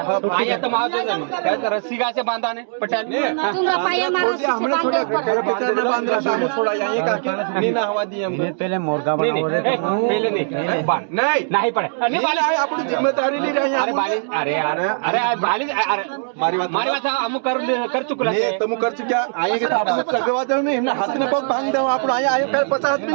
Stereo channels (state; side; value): silent; left; digital silence